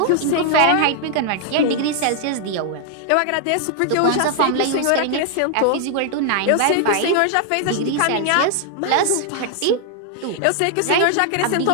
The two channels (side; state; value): both; different; correlation 0.00